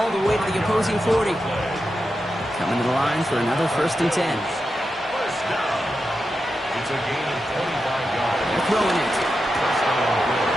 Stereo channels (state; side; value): normal; both; correlation 0.89